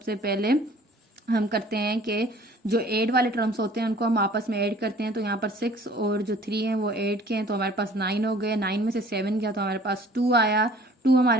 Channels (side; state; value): both; normal; correlation 0.51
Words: पहले हम करते हैं कि जो ऐड वाले टर्म्स होते हैं उनको हम आपस में ऐड करते हैं। तो यहाँ पर 6 और जो 3 हैं वो ऐड के हैं तो हमारे पास 9 हो गए। 9 में से 7 गया तो हमारे पास 2 आया। 2